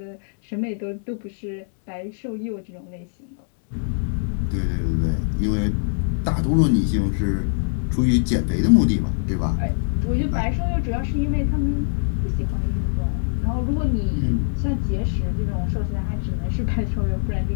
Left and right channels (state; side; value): silent; right; digital silence